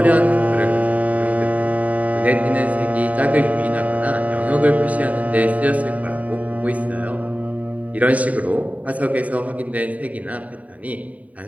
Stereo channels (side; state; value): left; late; 0.070 ms